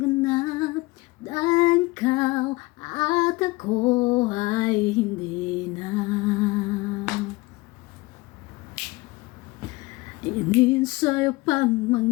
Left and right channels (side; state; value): right; quieter; 22.3 dB